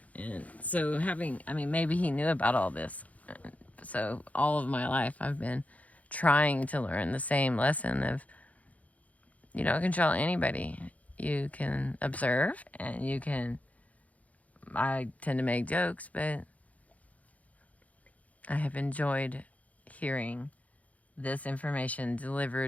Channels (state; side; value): late; right; 0.070 ms